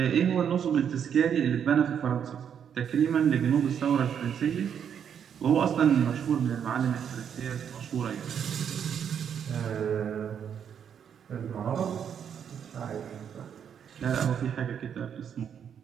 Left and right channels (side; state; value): left; quieter; 8.2 dB